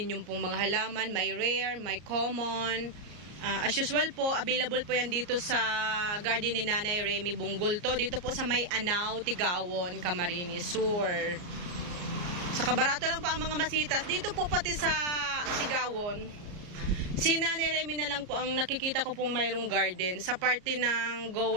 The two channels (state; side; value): late; left; 34 ms